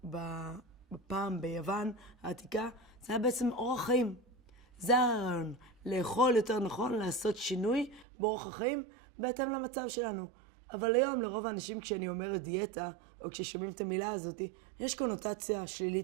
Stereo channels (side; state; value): left; drops out; at 8.1 s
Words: בפעם ביוון העתיקה זה היה בעצם אורח חיים. זה הרעיון. לאכול יותר נכון, לעשות שינוי באורח החיים בהתאם למצב שלנו. אבל היום לרוב האנשים כשאני אומרת דיאטה, או כששומעים את המילה הזאת, יש קונוטציה